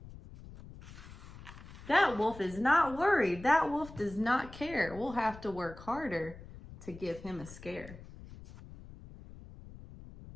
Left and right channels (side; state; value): left; noise; rumble, 16 dB below the sound